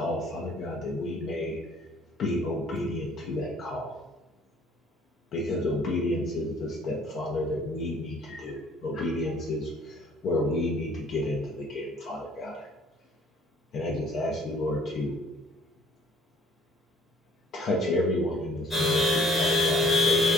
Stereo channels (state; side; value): normal; both; correlation 0.58